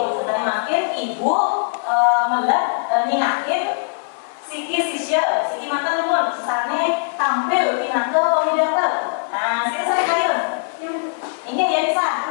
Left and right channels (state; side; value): silent; right; digital silence